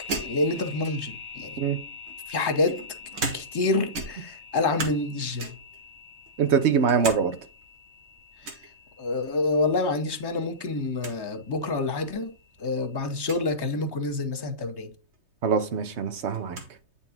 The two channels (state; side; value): late; left; 3.2 ms